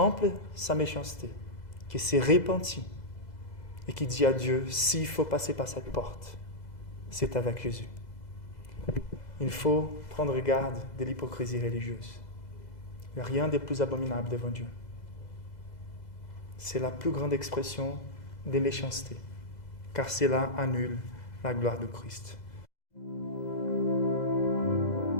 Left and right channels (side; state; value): right; late; 2.0 ms